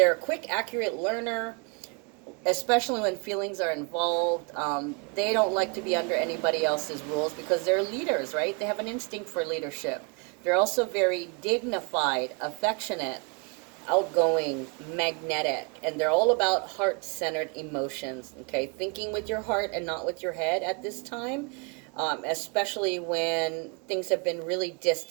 a quick, accurate learner. especially when feelings are involved. They don't like to be under anybody else's rules because they're leaders, right? They have an instinct for leadership. They're also very dignified, affectionate, outgoing, magnetic, and they're all about heart-centered emotions, okay? Thinking with your heart and not with your head at this time, especially when things have been really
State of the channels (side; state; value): left; quieter; 32.6 dB